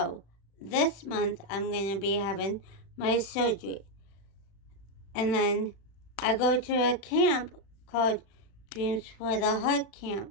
this month I'm going to be having my surgery. And then I go to a camp called Dreams for the Heart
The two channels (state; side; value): late; right; 36 ms